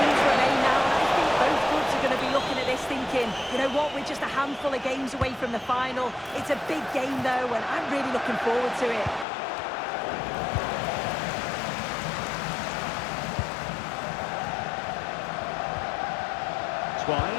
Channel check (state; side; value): drops out; right; at 9.2 s